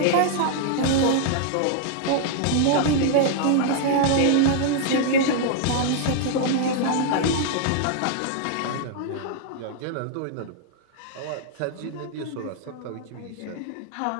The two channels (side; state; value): both; different; correlation -0.01